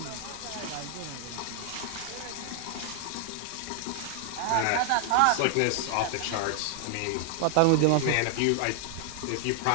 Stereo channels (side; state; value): both; different; correlation 0.00